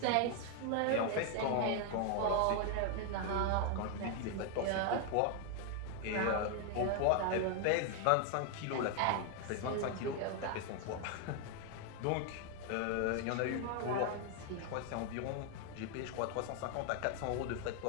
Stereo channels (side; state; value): both; different; correlation 0.01